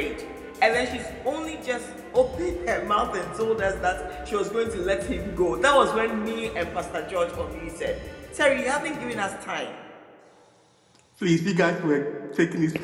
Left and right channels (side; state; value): both; identical; correlation 1.00